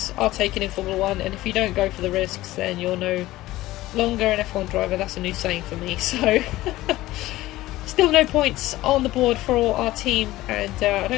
are taken in Formula 1, and if you don't go for the risks, then you're no longer an F1 driver. That's a new saying for me. So, still no points on the board for our team, and I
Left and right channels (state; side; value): quieter; right; 16.9 dB